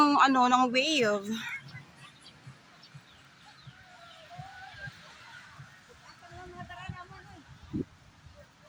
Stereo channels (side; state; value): both; identical; correlation 1.00